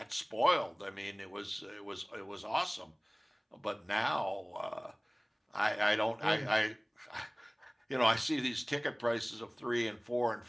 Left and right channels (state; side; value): identical; both; correlation 1.00